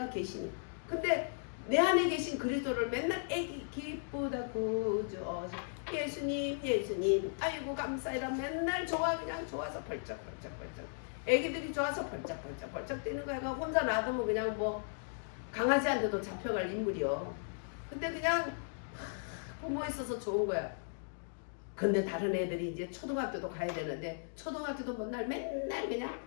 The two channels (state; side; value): silent; right; digital silence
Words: 계시니. 근데 내 안에 계신 그리스도를 맨날 애기 기쁘다 구주 예수님 예수님 아이고 감사해라 맨날 좋아 그냥 좋아서 벌쩍벌쩍 애기들이 좋아서 벌쩍벌쩍 뛰는 거야. 혼자 놔두면 그냥 뭐 강아지한테도 잡혀갈 인물이요. 근데 그냥 부모 있어서 좋은 거야. 근데 다른 애들이 이제 초등학교도 가야 되는데 초등학교도 맨날 그냥